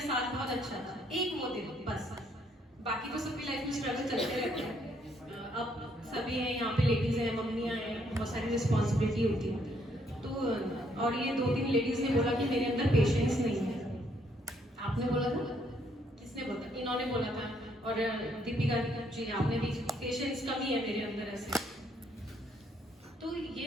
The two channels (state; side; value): normal; both; correlation 0.70